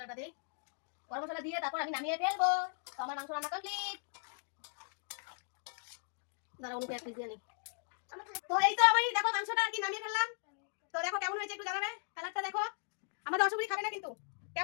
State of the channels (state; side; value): silent; right; 53 dB below the other